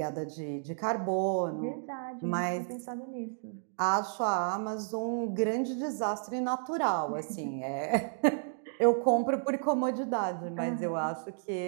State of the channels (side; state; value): left; silent; digital silence